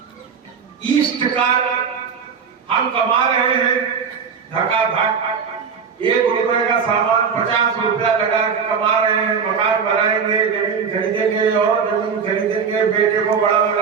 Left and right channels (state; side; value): quieter; left; 6.3 dB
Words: ईस्ट का हम कमा रहे हैं धकाधक, 1 रुपए का सामान 50 रुपया लगा के कमा रहे हैं, मकान बनाएंगे, जमीन खरीदेंगे और जमीन खरीदेंगे, बेटे को बड़ा